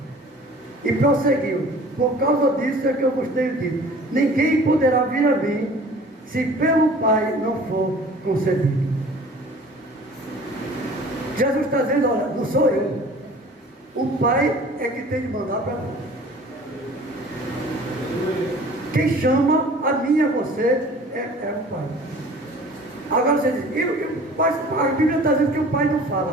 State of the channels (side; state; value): both; normal; correlation 0.47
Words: E prosseguiu: por causa disso é que eu vos tenho dito: ninguém poderá vir a mim, se pelo Pai não for concedido. Jesus está dizendo: olha, não sou eu. O Pai é que tem de mandar para mim. Quem chama a mim e a você é o Pai. Agora você diz: a Bíblia está dizendo que o Pai não